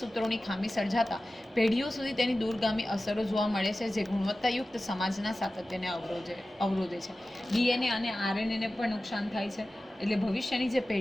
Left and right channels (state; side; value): normal; both; correlation 0.95